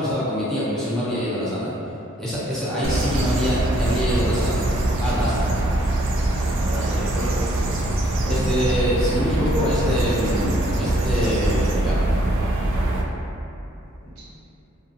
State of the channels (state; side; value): normal; both; correlation 0.68